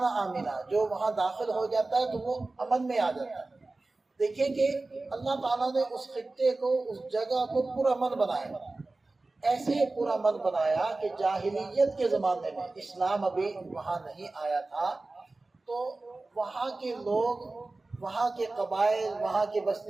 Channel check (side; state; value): left; quieter; 3.2 dB